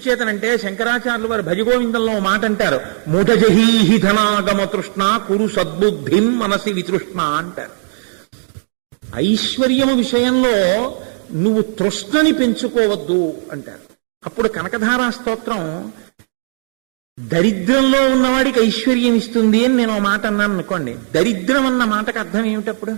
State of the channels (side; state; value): left; silent; digital silence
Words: శంకరాచార్యులు వారు భజగోవిందంలో మాట అంటారు, మూఢజహీహి ధనాగమ తృష్ణ కురు సద్బుద్ధిం మనసి వితృష్ణ అంటారు. ఐశ్వర్యము విషయంలో నువ్వు తృష్ణని పెంచుకోవద్దు అంటారు. అప్పుడు కనకధారా స్తోత్రం దరిద్రంలో ఉన్నవాడికి ఐశ్వర్యం ఇస్తుంది అని నేను మాట అన్నాను అనుకోండి. దరిద్రం అన్న మాటకు అర్థం ఏమిటప్పుడు?